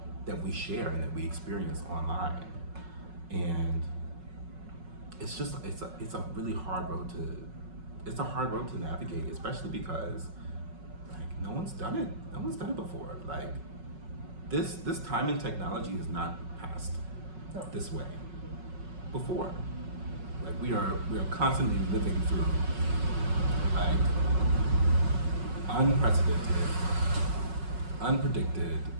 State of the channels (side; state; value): left; late; 5.4 ms